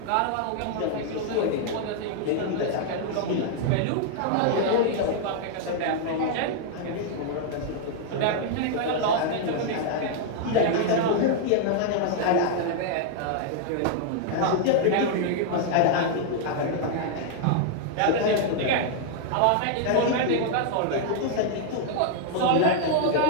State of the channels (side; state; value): both; different; correlation -0.01